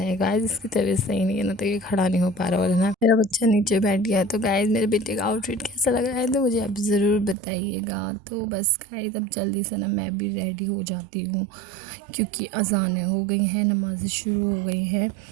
गाइस इसकी तबीयत सही नहीं है ना, तो ये खड़ा नहीं हो पा रहा, और ना मेरा बच्चा नीचे बैठ गया। तो गाइस मेरे बेटे का आउटफिट कैसा लग रहा है तो मुझे आप ज़रूर बताइएगा। तो बस गाइस अब जल्दी से ना मैं भी रेडी हो जाती हूँ, क्योंकि अज़ानें हो गई हैं, नमाज़ें शुरू हो गई हैं।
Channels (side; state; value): left; drops out; at 7.4 s